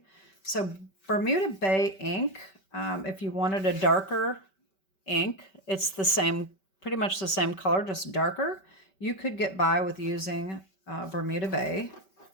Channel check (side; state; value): right; late; 5.2 ms